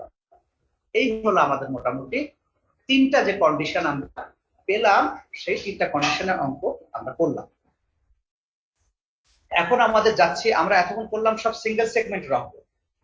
এই হলো আমাদের মোটামুটি 3টা যে কন্ডিশন আমরা পেলাম, সেই 3টা কন্ডিশনের অঙ্ক আমরা করলাম। এখন আমাদের যাচ্ছি, আমরা এতক্ষণ করলাম সব সিঙ্গেল সেগমেন্টের অঙ্ক।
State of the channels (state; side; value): identical; both; correlation 1.00